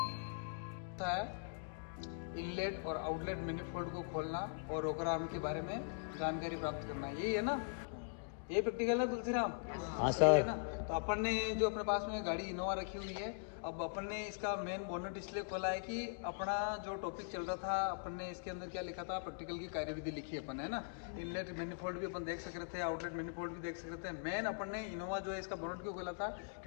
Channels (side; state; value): right; silent; digital silence